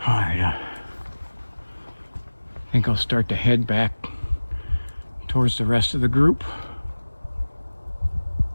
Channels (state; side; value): inverted; both; correlation -1.00